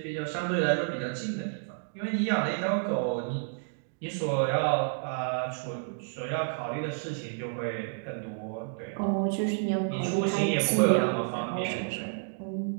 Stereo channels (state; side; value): silent; left; digital silence